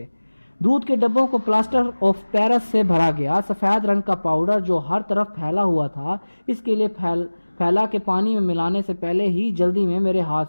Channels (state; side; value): inverted; both; correlation -1.00